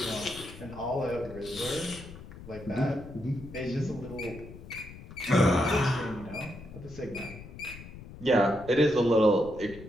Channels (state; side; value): noise; left; rumble, 15 dB below the sound